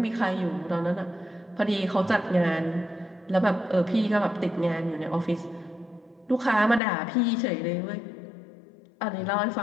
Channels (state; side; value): drops out; right; at 6.8 s